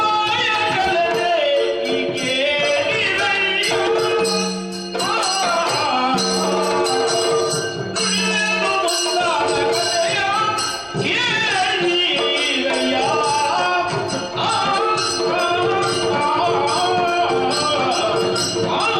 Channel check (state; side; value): identical; both; correlation 1.00